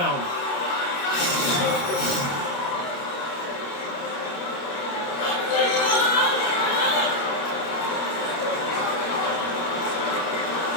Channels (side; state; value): right; late; 29 ms